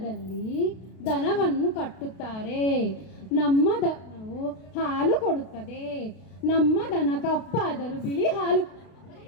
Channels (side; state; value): right; late; 32 ms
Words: ದನವನ್ನು ಕಟ್ಟುತ್ತಾರೆ. ನಮ್ಮ ದನವು ಹಾಲು ಕೊಡುತ್ತದೆ. ನಮ್ಮ ದನ ಕಪ್ಪಾದರೂ ಬಿಳಿ ಹಾಲು.